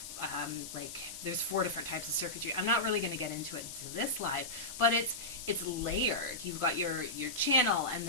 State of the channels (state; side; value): noise; left; hiss, 9 dB below the sound